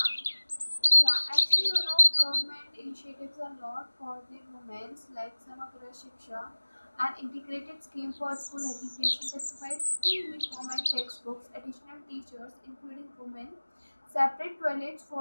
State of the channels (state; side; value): inverted; both; correlation -1.00